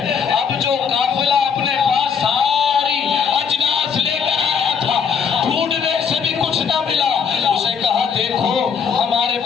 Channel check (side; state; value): right; quieter; 6.5 dB